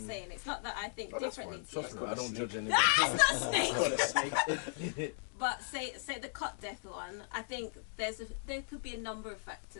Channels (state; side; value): silent; right; digital silence